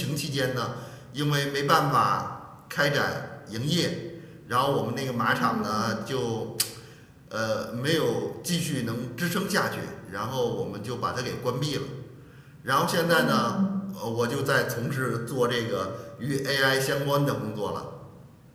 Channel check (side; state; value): both; identical; correlation 1.00